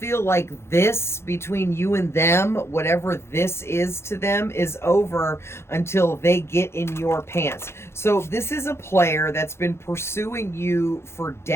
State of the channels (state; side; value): late; right; 0.12 ms